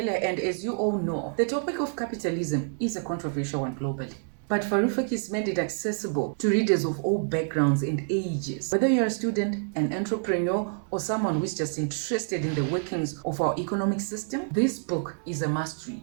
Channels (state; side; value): silent; left; 60 dB below the other